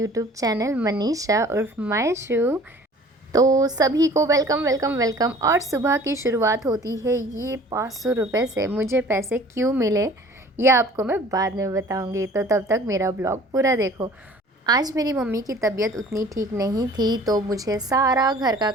channel Manisha उर्फ माय शू। तो सभी को वेलकम वेलकम वेलकम। और सुबह की शुरुआत होती है ये 500 रुपये से। मुझे पैसे क्यों मिले ये आपको मैं बाद में बताऊंगी, तो तब तक मेरा ब्लॉग पूरा देखो। आज मेरी मम्मी की तबीयत उतनी ठीक नहीं थी, तो मुझे सारा घर का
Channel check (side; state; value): both; normal; correlation 0.49